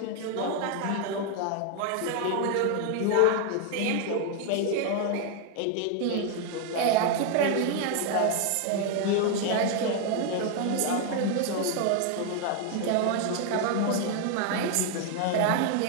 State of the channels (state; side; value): different; both; correlation 0.00